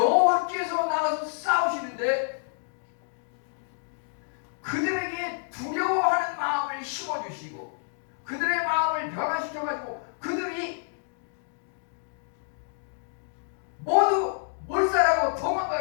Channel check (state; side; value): silent; right; digital silence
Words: 나가서 싸우시는데 그들에게 두려워하는 마음을 심어주시고 그들의 마음을 변화시켜가지고 그들이 모두 몰살하고